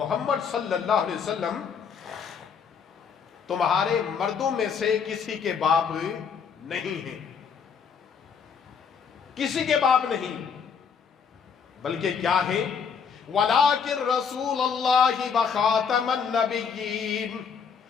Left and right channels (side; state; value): right; quieter; 6.5 dB